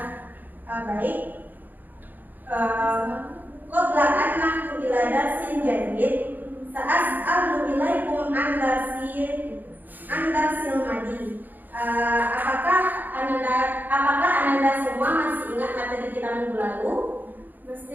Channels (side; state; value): left; late; 0.086 ms